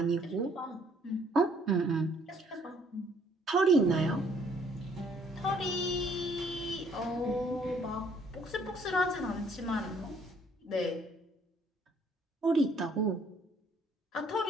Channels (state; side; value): normal; both; correlation 0.63